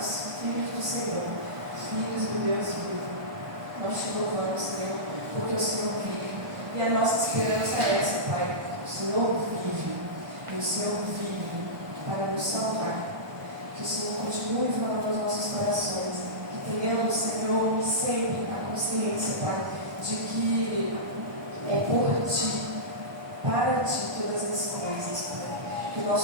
filhos do Senhor, filhos do Deus vivo. Nós te louvamos, Senhor, porque o Senhor vive. E a nossa esperança é essa, Pai. O Senhor vive. E o Senhor vive para nos salvar. Que o Senhor continue falando nos nossos corações. Que tenhamos, Senhor, sempre a consciência, Pai, de que é por Ti, para Ti todas as coisas, Pai. Que o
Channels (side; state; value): left; late; 1.2 ms